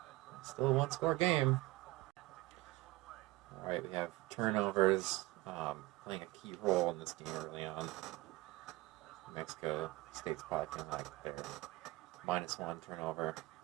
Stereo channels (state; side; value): quieter; left; 19.9 dB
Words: Still a one-score game. All right, we have turnovers playing a key role in this game early on. Mexico State's probably feeling like their -1 turnover.